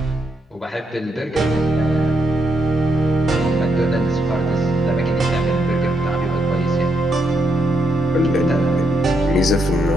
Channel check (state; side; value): normal; both; correlation 0.78